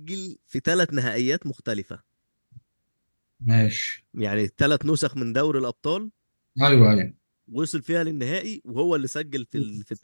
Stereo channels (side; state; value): both; inverted; correlation -1.00